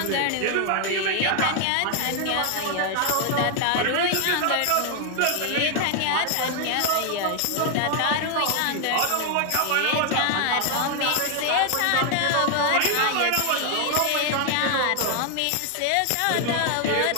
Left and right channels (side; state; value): both; different; correlation 0.00